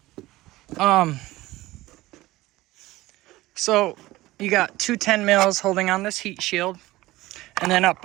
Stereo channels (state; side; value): quieter; left; 18.1 dB